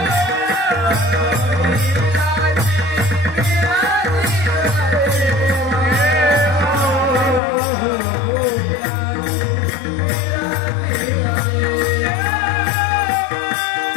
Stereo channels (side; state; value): right; drops out; at 7.4 s